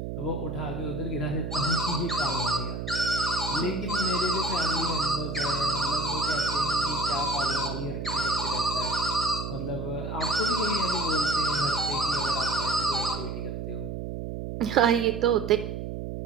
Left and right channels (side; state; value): right; noise; hum, 5 dB below the sound